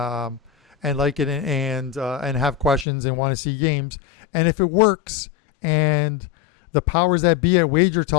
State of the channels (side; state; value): right; drops out; at 2.9 s